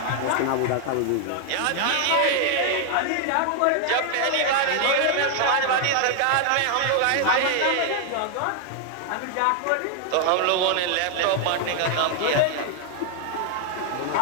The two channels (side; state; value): both; different; correlation 0.00